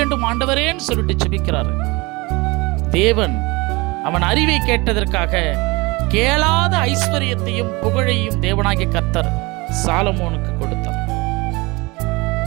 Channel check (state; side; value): quieter; left; 24.7 dB